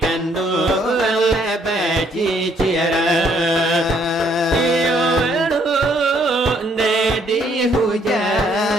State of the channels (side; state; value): both; normal; correlation 0.67